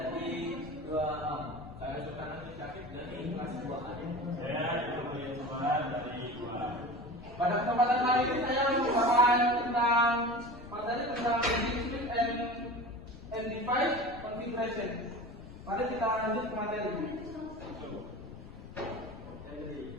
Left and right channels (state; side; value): noise; left; rumble, 16 dB below the sound